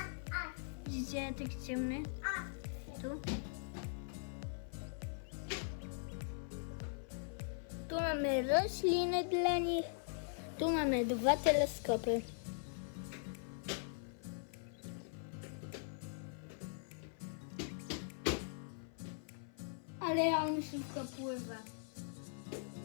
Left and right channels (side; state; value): right; silent; 50 dB below the other